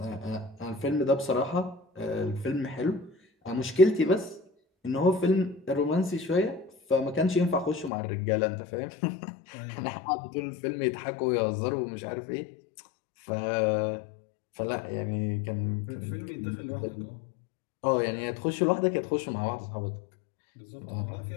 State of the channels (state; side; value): drops out; right; at 7.9 s